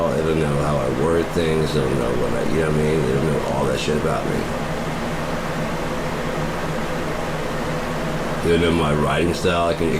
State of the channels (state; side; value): identical; both; correlation 1.00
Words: It'll know how I word things. It'll know what I, you know what I mean? It'll know all that shit about me. It'll know my writing style. It